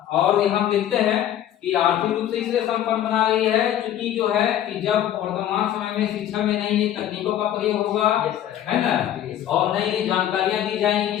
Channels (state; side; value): quieter; right; 11.3 dB